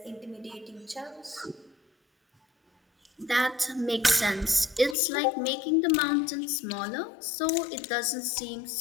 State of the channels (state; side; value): drops out; right; at 5.0 s